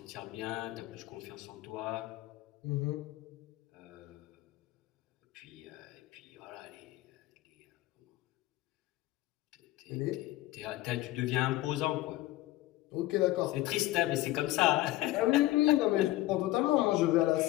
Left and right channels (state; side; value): quieter; right; 17.0 dB